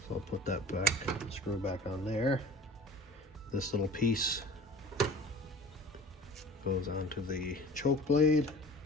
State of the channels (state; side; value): normal; both; correlation 0.43